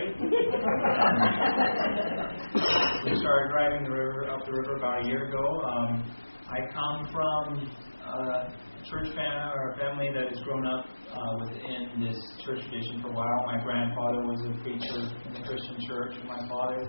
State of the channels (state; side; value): inverted; both; correlation -1.00